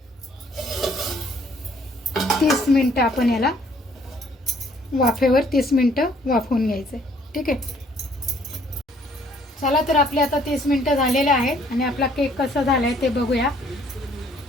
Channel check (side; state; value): both; normal; correlation 0.62